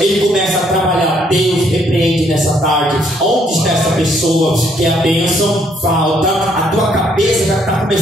ele começa a trabalhar. Deus repreende nessa tarde. Onde está essa pessoa que a bênção falta? A tua cabeça já está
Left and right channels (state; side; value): normal; both; correlation 0.68